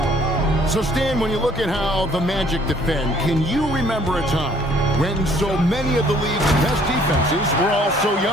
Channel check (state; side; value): normal; both; correlation 0.60